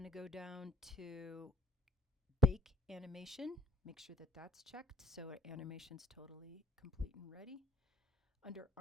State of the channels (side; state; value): both; normal; correlation 0.56